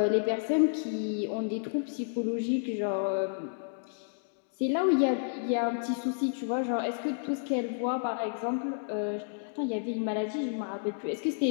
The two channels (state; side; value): silent; right; digital silence